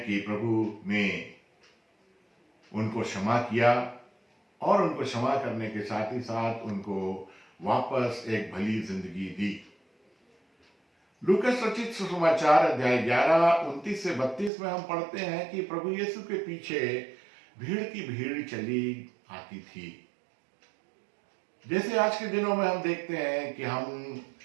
कि प्रभु ने उनको क्षमा किया और उनको क्षमा करने के साथ ही साथ उनको वापस एक भली जिंदगी दी। लूकस रचित सुसमाचार अध्याय 11:29-32 में हम पढ़ते हैं कि प्रभु यीशु के पीछे भीड़ की भीड़ चली आती थी। जैसे आज के दिनों में हम देखते हैं कि हम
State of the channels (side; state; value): left; drops out; at 14.5 s